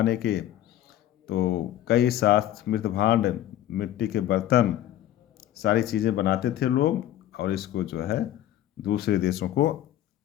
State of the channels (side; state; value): right; quieter; 12.7 dB